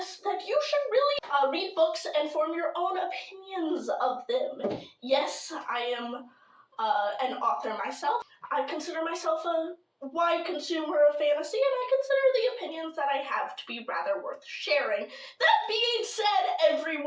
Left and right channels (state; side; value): identical; both; correlation 1.00